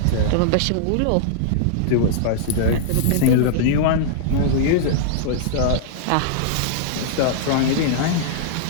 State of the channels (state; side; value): different; both; correlation -0.01